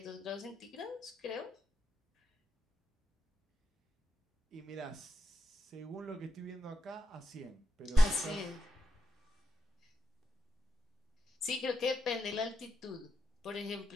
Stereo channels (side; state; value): both; normal; correlation 0.85